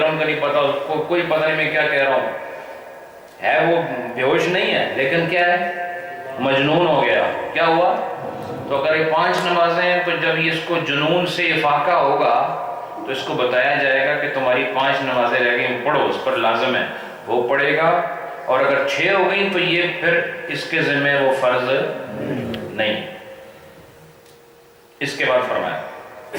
کا نہیں پتہ، اس کو کوئی پتہ نہیں میں کیا کہہ رہا ہوں، ہے وہ بے ہوش نہیں ہے لیکن کیا ہے؟ مجنون ہو گیا۔ کیا ہوا؟ تو اگر یہ 5 نمازیں ہیں تو جب یہ اس کو جنون سے افاقہ ہوگا تو اس کو بتایا جائے گا کہ تمہاری 5 نمازیں رہ گئی، پڑھو، اس پر لازم ہے، وہ پڑھے گا۔ اور اگر 6 ہو گئی تو یہ پھر اس کے ذمہ وہ فرض نہیں۔ اس کے بعد فرمایا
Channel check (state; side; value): identical; both; correlation 1.00